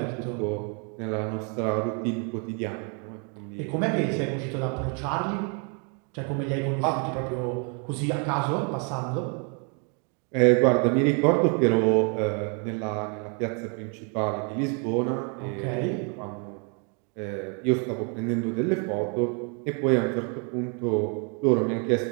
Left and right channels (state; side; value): quieter; left; 37.4 dB